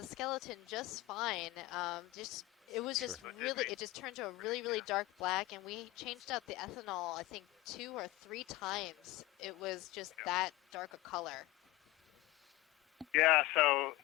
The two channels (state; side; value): quieter; right; 19.1 dB